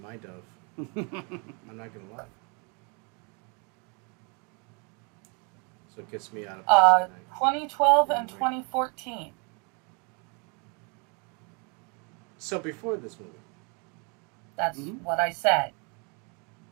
dove. I'm not gonna lie. So it gets me out of 2012 and Right. 2014. So before this movie. That's Mhm. what I said.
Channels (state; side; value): quieter; left; 34.2 dB